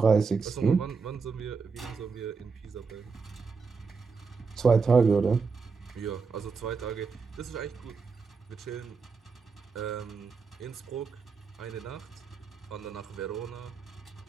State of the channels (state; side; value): quieter; left; 5.0 dB